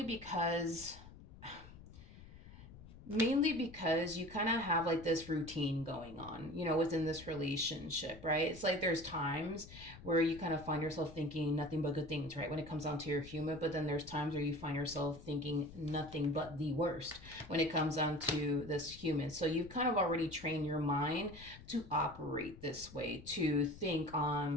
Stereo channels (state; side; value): noise; left; rumble, 17 dB below the sound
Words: because you kind of have like this routine going on, within this relationship, right? It's like there's times where you kind of find yourself thinking nothing but good things, right? When it comes down to your human, but then there's times where you find yourself thinking nothing but the worst when it comes down to this human. So you've kind of already trained your mind to operate this way, to think